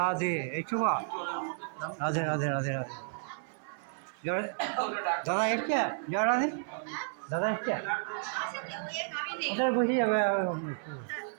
এই চুবা। রাধে রাধে রাধে রাধে। জয় দাদা এসছে, জয় রাধে। দাদা এসছে, ওদের বসে যাবে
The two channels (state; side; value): silent; left; 56 dB below the other